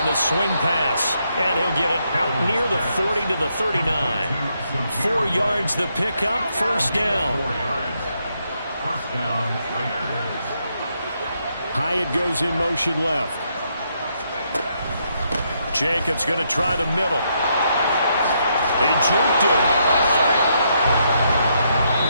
the swing pass. And he'll get it out near the 40 to the 39. 4 yards the pickup, 1st down. Hyatt goes in motion left. Jacobs going to try the middle. He juked him.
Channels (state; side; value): inverted; both; correlation -0.77